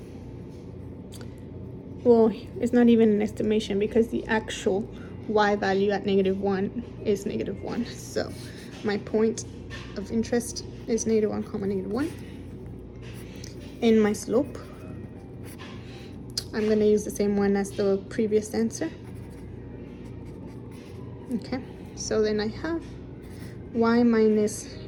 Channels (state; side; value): identical; both; correlation 1.00